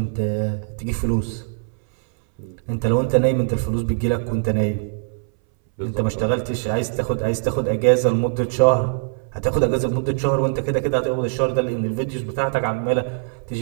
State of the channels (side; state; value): left; silent; 63 dB below the other